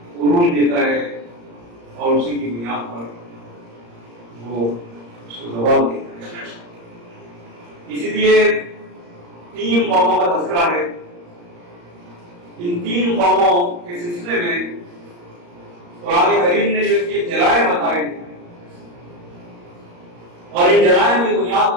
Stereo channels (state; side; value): late; left; 34 ms